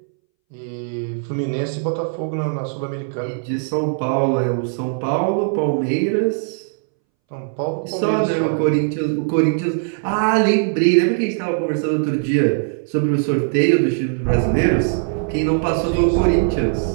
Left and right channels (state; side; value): silent; left; 64 dB below the other